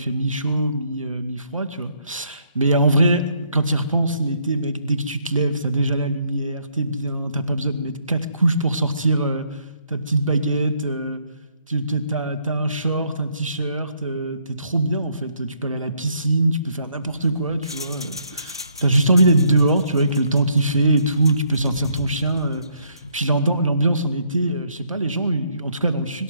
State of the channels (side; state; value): both; inverted; correlation -0.69